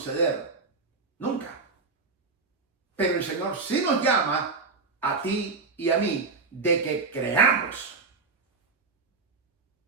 Nunca. Pero el Señor sí nos llama a ti y a mí de que creamos.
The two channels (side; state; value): left; quieter; 4.3 dB